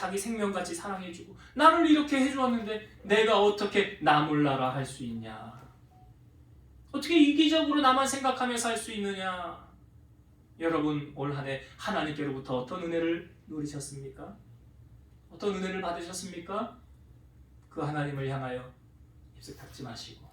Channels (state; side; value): identical; both; correlation 1.00